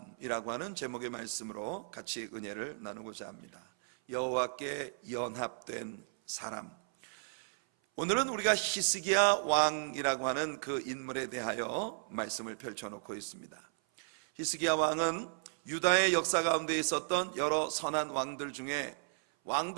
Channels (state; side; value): silent; left; 55 dB below the other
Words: 하는 제목의 말씀으로 같이 은혜를 나누고자 합니다. 여호와께 연합된 사람. 오늘은 우리가 히스기야 왕이라고 하는 그 인물에 대하여 말씀을 펼쳐놓고 있습니다. 히스기야 왕은 유다의 역사 가운데 있었던 여러 선한 왕들